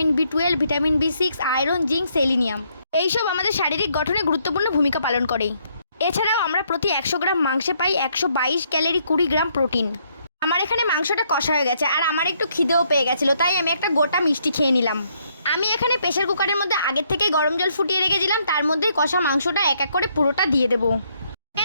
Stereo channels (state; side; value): inverted; both; correlation -0.72